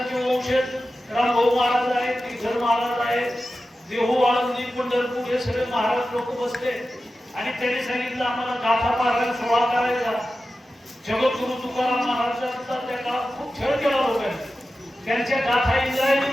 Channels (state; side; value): normal; both; correlation 0.93